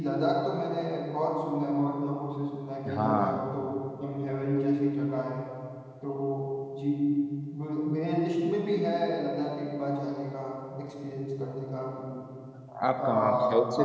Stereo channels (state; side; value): identical; both; correlation 1.00